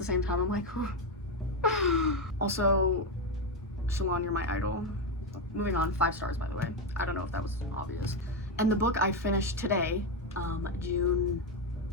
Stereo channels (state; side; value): normal; both; correlation 0.09